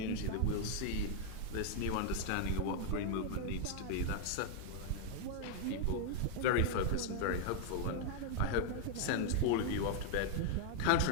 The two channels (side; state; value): both; different; correlation 0.00